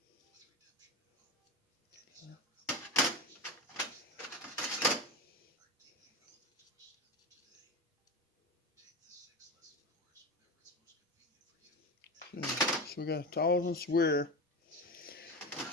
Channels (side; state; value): both; normal; correlation 0.23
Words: Okay, so we got 1,000 square.